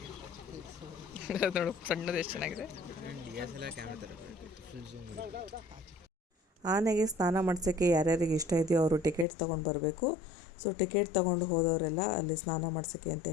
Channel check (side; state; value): right; drops out; at 9.2 s